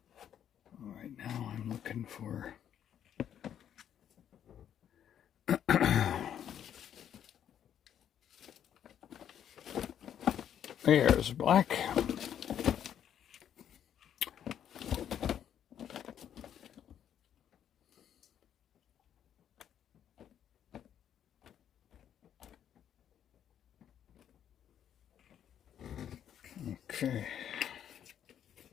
right, now I'm looking for there's black. Okay.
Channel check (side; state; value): right; quieter; 9.6 dB